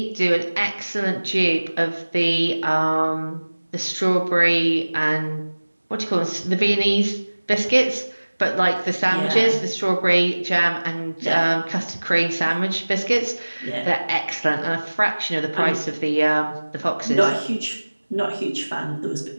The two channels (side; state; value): both; inverted; correlation -1.00